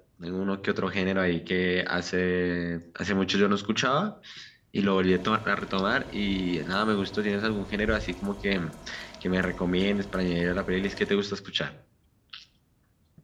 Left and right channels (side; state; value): both; identical; correlation 1.00